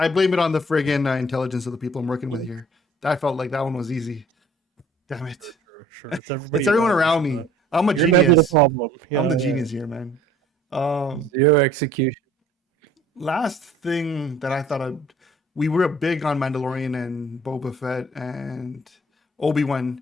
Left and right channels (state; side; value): normal; both; correlation 0.53